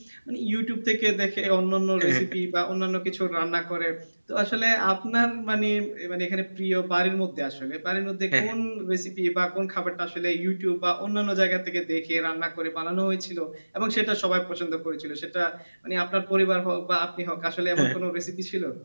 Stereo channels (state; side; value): inverted; both; correlation -1.00